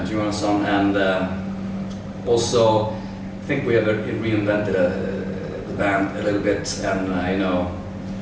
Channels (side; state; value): both; identical; correlation 1.00